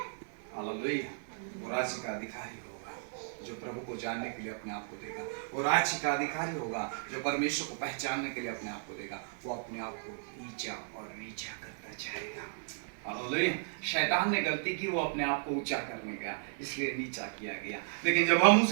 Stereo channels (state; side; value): silent; left; 55 dB below the other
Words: हालेलुया। वो राज्य का अधिकारी होगा जो प्रभु को जानने के लिए अपने आप को देगा। वो राज्य का अधिकारी होगा जो परमेश्वर को पहचानने के लिए अपने आप को देगा। वो अपने आप को नीचा और नीचा करता जाएगा। हालेलुया। शैतान ने गलती की, वो अपने आप को ऊंचा करने का, इसलिए नीचा किया गया। लेकिन जब हम